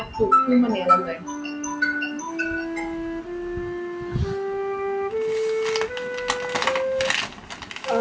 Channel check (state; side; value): identical; both; correlation 1.00